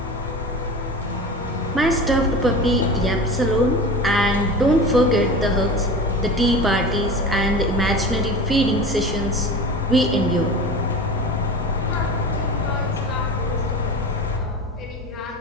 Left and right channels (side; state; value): both; normal; correlation 0.32